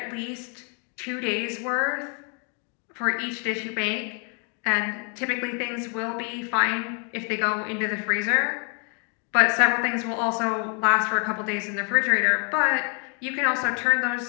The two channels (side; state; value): right; quieter; 38.1 dB